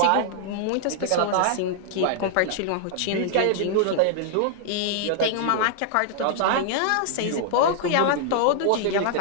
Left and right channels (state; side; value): different; both; correlation -0.01